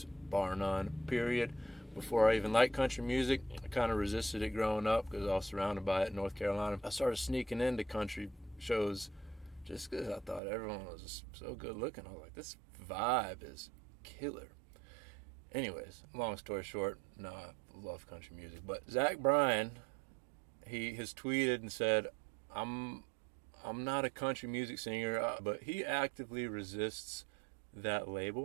bar none, period. Before I even liked country music, I kind of resisted it growing up because I was surrounded by it in North Carolina. I started sneaking into country shows just because I thought everyone was just so good looking. I was like, this vibe is killer. Anyways, long story short, no, I love country music. But Bryan, he has tweeted and said, I'm not a country music singer, but he actively resists that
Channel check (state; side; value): drops out; left; at 10.4 s